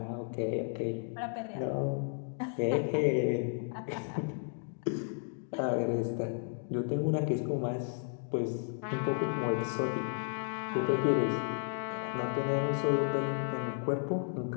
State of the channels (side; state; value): right; silent; 56 dB below the other